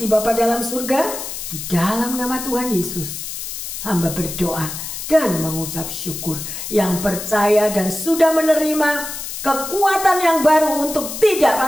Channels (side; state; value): left; noise; hiss, 7 dB below the sound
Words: Bapa dalam surga, di dalam nama Tuhan Yesus. Hamba berdoa dan mengucap syukur, yang percaya dan sudah menerima kekuatan yang baru untuk tidak